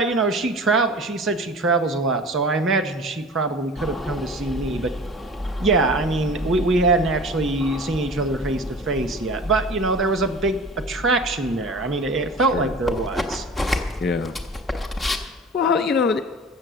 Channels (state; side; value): normal; both; correlation 0.39